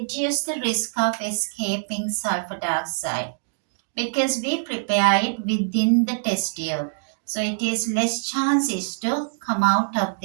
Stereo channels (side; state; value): left; silent; digital silence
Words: the risk of escaping sulfur dioxide because we prepare it within the test tube. So it is less chances to come out of